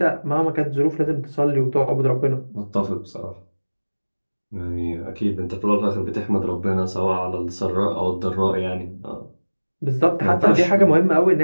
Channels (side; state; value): both; inverted; correlation -1.00